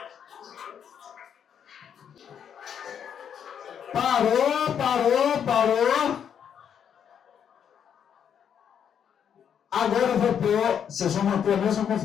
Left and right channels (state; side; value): quieter; right; 8.3 dB